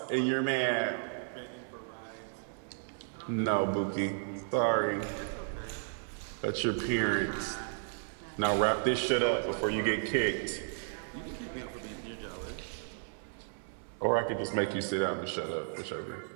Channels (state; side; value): silent; left; digital silence